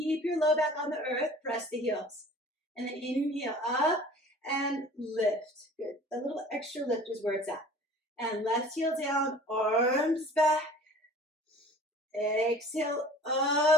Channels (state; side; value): normal; both; correlation 0.46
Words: your low back on the earth. Press the heels. And then inhale up and lift. Good. A little extra lift is where it's at. And left heel down, arms back. Exhale